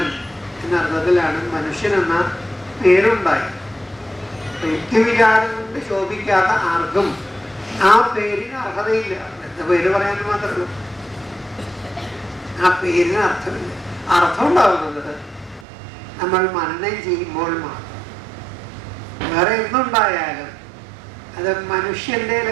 എന്ന അർത്ഥത്തിലാണ് മനുഷ്യൻ എന്ന പേരുണ്ടായത്. യുക്തിവിചാരം കൊണ്ട് ശോഭിക്കാത്ത ആർക്കും ആ പേരിന് അർഹതയില്ല. എന്താ പേര് പറയാൻ മാത്രമേ ആ പേരിന് അർത്ഥമില്ല. അർത്ഥം ഉണ്ടാവുന്നത് നമ്മൾ മനനം ചെയ്യുമ്പോൾ മാത്രം. വേറെ എന്തുണ്ടായാലും അത് മനുഷ്യന്റെ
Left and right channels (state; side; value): drops out; left; at 15.7 s